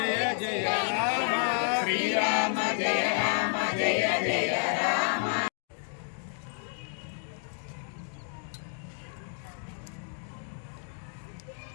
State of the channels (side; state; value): right; silent; 58 dB below the other